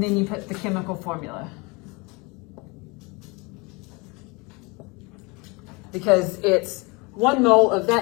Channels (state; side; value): quieter; right; 27.4 dB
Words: then you put the chemical formula. Because it's 1 mole of